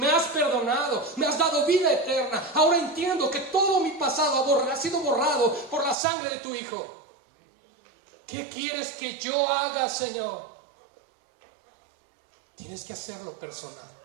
has perdonado, me has dado vida eterna. Ahora entiendo que todo mi pasado ha sido borrado por la sangre de tu Hijo. ¿Qué quieres que yo haga, Señor? Tienes que hacerlo personal.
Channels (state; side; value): drops out; left; at 6.0 s